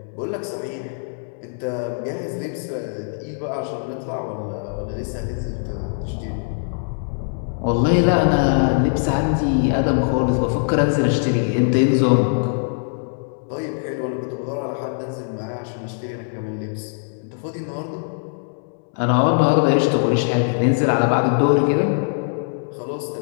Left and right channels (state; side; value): silent; right; digital silence